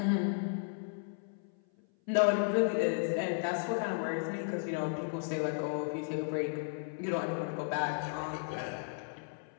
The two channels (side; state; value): right; silent; 55 dB below the other